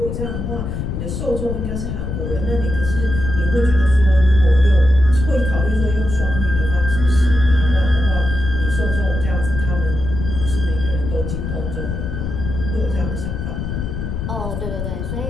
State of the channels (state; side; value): noise; left; rumble, 5 dB below the sound